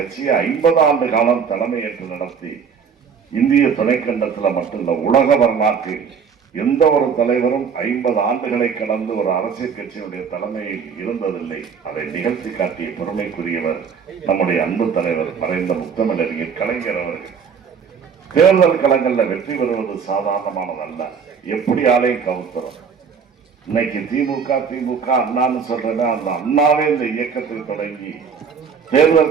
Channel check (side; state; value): left; quieter; 6.4 dB